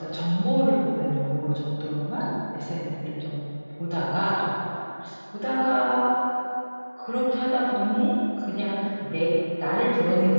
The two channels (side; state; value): both; inverted; correlation -1.00